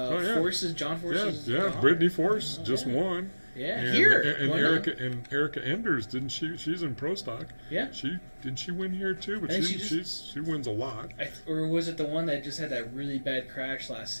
Forces, John Forces. Yeah. daughter. Brittany Force just yeah. won. Yeah, And, here. and Won Erica Enders, didn't she? She's in pro stock. Yeah. Didn't she win here too? But I think she wins a lot. or was it the one that just had that really bad crash last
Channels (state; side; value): inverted; both; correlation -1.00